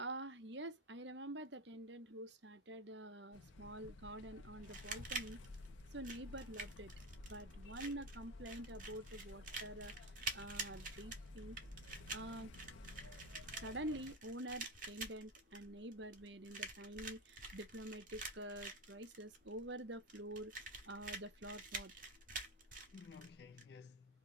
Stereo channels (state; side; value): normal; both; correlation 0.16